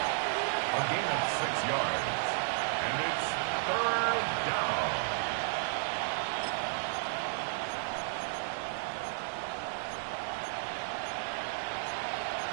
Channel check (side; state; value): left; silent; digital silence